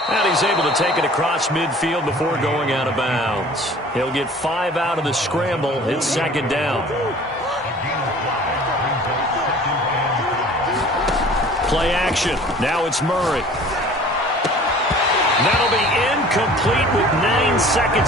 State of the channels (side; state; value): both; normal; correlation 0.47